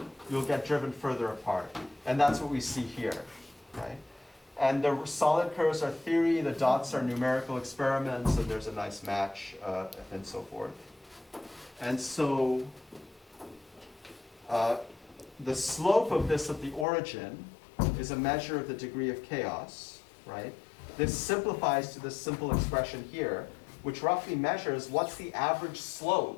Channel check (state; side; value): drops out; right; at 16.9 s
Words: you'll get driven further apart. And that's what we see here, right? And the solid curves are theory, the dots are numerical experiments, and there's a nice match, and so forth. And so the slope of this at the origin is a measure of the degree of chaos, right? This simplifies to this simple expression here, which roughly measures what's the average